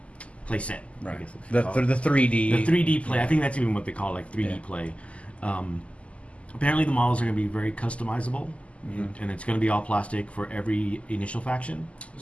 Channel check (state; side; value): late; right; 0.061 ms